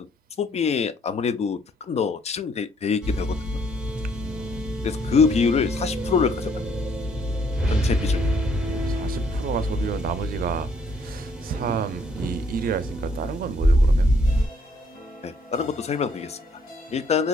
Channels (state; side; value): normal; both; correlation 0.66